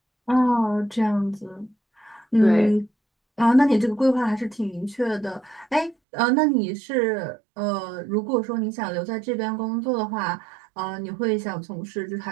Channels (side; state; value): left; drops out; at 6.0 s